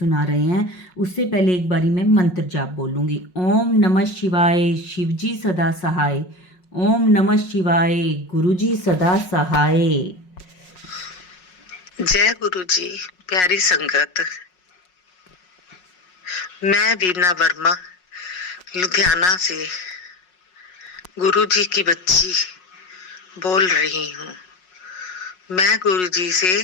रहे हैं। उससे पहले एक बारी मैं मंत्र जाप बोलूँगी। ओम नमः शिवाय, शिवजी सदा सहाय। ओम नमः शिवाय, गुरुजी सदा सहाय। जय गुरु जी। प्यारी संगत, मैं वीना वर्मा लुधियाना से गुरु जी की बच्ची बोल रही हूँ। मैं गुरु जी से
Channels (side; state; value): right; late; 5.5 ms